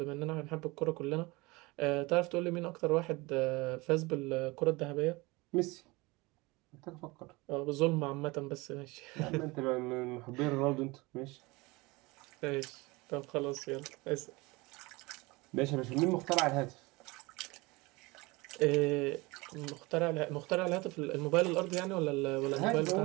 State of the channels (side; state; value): left; quieter; 23.5 dB